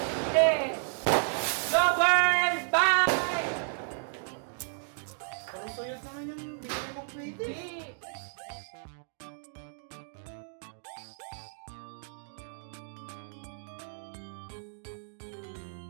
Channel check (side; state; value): left; silent; digital silence